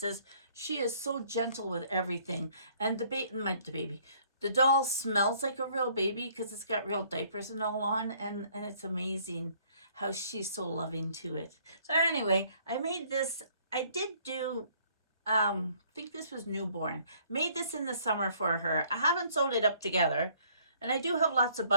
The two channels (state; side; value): inverted; both; correlation -0.61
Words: She is so gentle with everything. And the doll smells like a real baby because it's got real diapers and all on. And it's amazing how she's so loving to it. So anyway, I made this. I did do, I think this was newborn. Made this in the summer for her. I haven't sewed it up together. And I do have lots of